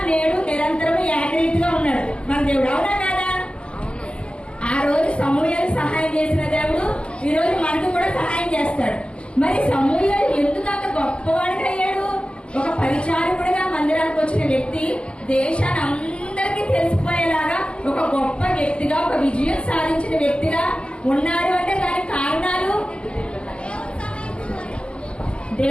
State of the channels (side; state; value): right; late; 0.057 ms